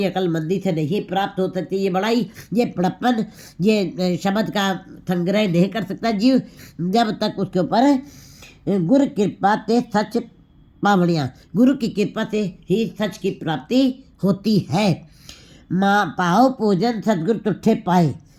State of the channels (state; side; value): identical; both; correlation 1.00